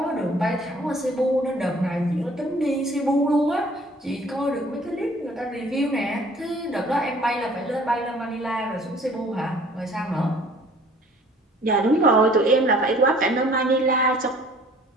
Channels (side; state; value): both; normal; correlation 0.54